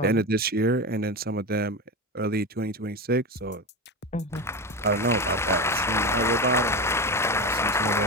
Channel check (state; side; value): normal; both; correlation 0.21